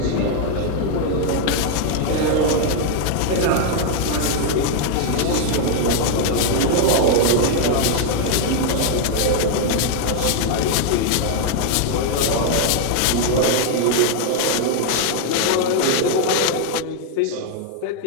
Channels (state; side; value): different; both; correlation 0.00